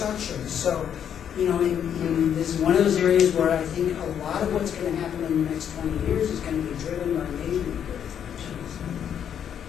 So, you know, this is one of those areas where I think a lot of what's going to happen in the next 20 years is going to be driven by measurement.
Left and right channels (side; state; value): right; quieter; 8.8 dB